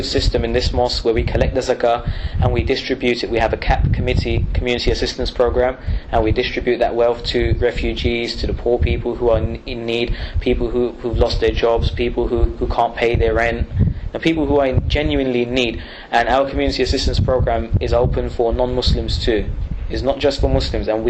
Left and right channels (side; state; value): both; identical; correlation 1.00